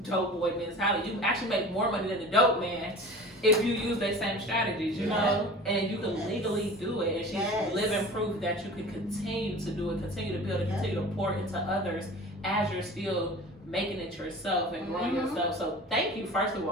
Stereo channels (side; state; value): both; normal; correlation 0.39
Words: dope boy mentality. You actually make more money than the dope man if you use the same strategies, you know, and you can legally do it. And she's living proof that you can continue to do it, continue to build it, continue to pour into others as you're still making it yourself and growing yourself. So thank you, first of